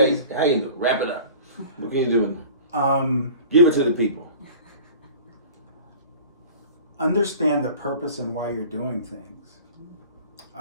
how you do? Wrap it up. What can you do? Give it to the people. Understand the purpose and why you're doing things.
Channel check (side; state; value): both; inverted; correlation -0.43